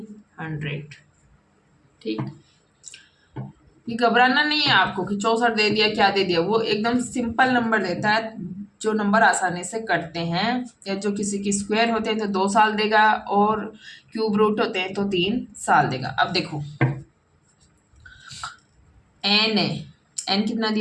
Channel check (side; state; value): both; identical; correlation 1.00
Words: 100। ठीक, ये घबराना नहीं है आपको कि 64 दे दिया क्या दे दिया, वो एकदम सिंपल नंबर देता है, जो नंबर आसानी से कटते हैं, या जो किसी की स्क्वायर होते हैं तो 2 साल देगा और क्यूब रूट होते हैं तो 3 साल देगा। अब देखो n है, n कितना